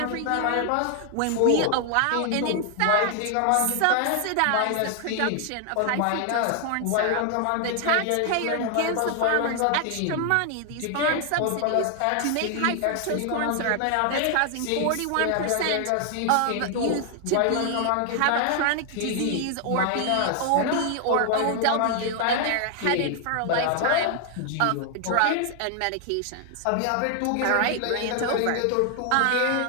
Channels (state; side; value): different; both; correlation 0.00